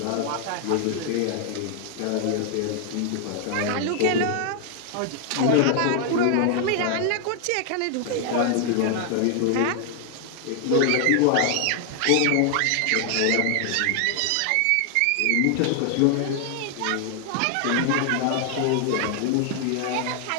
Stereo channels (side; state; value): both; different; correlation 0.00